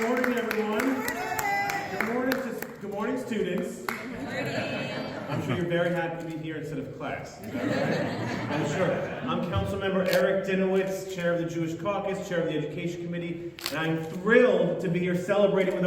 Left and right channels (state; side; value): identical; both; correlation 1.00